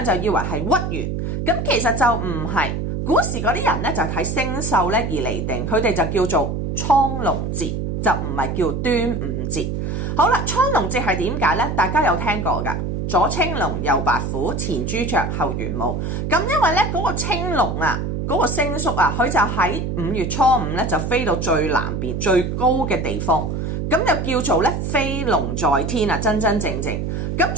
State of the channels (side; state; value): right; noise; hum, 2 dB below the sound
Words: 就以為係屈原，咁其實就唔係。古時嗰啲人咧就睇星宿咧而嚟定，佢哋就叫做蒼龍節，就唔係叫端午節。好啦，蒼龍節係點解呢？大家有聽過噶？左青龍，右白虎，前朱雀，後玄武。咁因為咧嗰個青龍啊，嗰個星宿啊，佢就喺5月初5咧就飛到最南邊最高嘅地方，咁就叫做咧飛龍在天啊，真真正正。咁